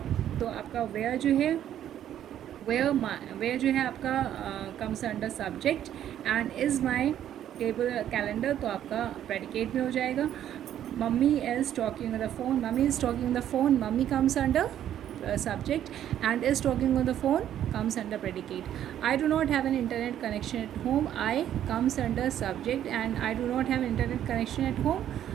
तो आपका वेयर जो है वेयर जो है आपका comes under subject and is my table calendar तो आपका प्रेडिकेट में हो जाएगा. Mummy is talking on the phone. Mummy is talking on the phone. Mummy comes under subject and is talking on the phone comes under predicate. I do not have an internet connection at home. I comes under subject and I do not have internet connection at home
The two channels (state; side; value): quieter; left; 10.9 dB